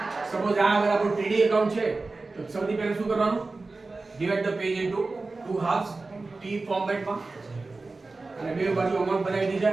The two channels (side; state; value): left; quieter; 3.6 dB